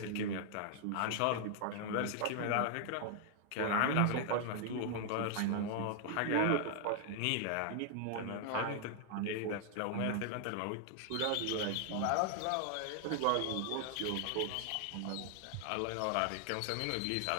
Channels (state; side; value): different; both; correlation 0.00